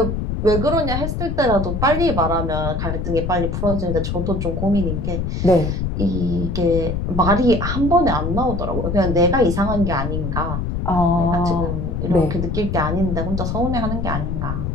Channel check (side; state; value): left; noise; rumble, 2 dB below the sound